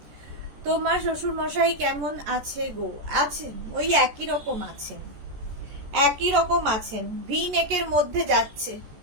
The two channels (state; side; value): late; left; 14 ms